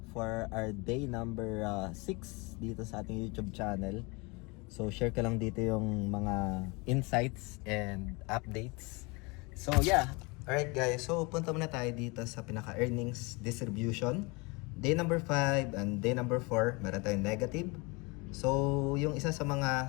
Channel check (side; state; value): right; quieter; 27.5 dB